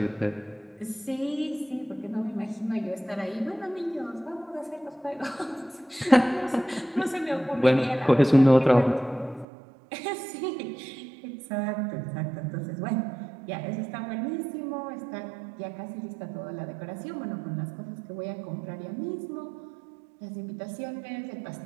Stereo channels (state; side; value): drops out; left; at 9.5 s